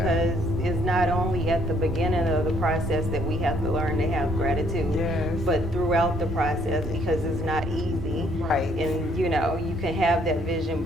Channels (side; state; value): both; normal; correlation 0.66